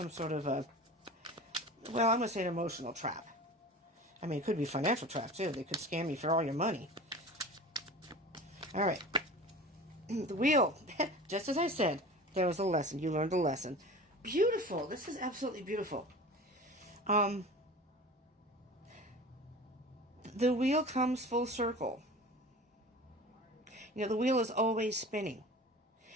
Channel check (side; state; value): both; normal; correlation 0.37